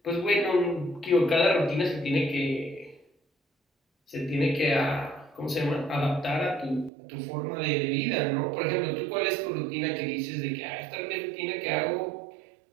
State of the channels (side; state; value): left; drops out; at 6.9 s